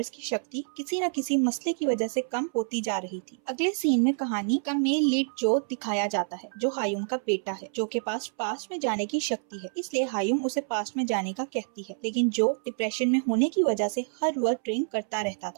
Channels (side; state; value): left; silent; 59 dB below the other